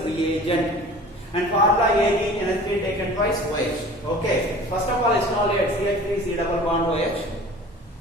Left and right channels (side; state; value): both; normal; correlation 0.43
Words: reagent, and formula AgNH3 taken twice OH. Okay. First of all, isolate CH3 C double bond OH